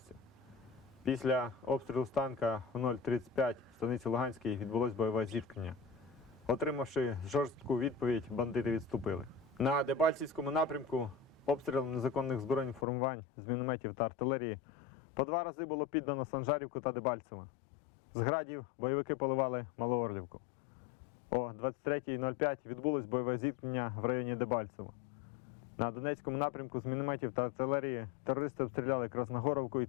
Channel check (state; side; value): drops out; right; at 12.9 s